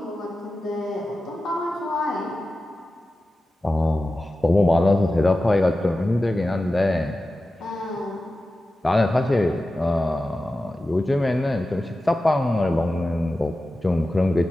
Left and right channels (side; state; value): both; normal; correlation 0.94